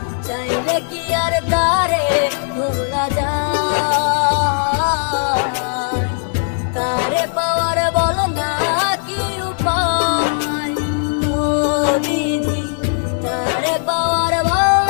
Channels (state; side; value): silent; right; digital silence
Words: চাইলে কি আর তারে ভোলা যায়। তারে পাওয়ার বলো না কি উপায়, ও বিধি, তারে পাওয়ার বলো